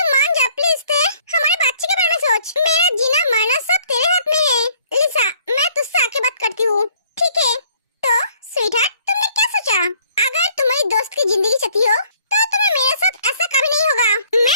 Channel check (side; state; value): both; inverted; correlation -0.60